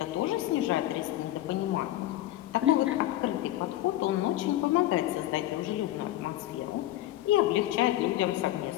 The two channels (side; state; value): right; quieter; 14.7 dB